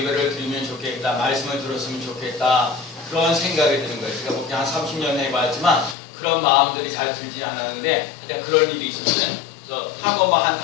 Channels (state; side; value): drops out; right; at 6.0 s